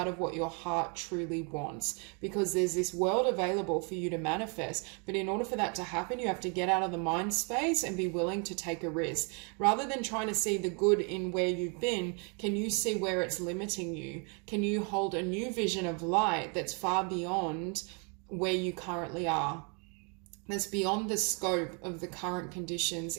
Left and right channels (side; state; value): left; quieter; 36.2 dB